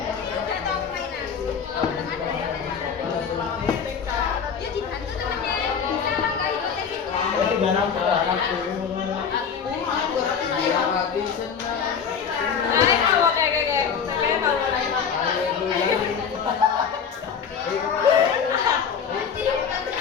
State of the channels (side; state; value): right; quieter; 6.8 dB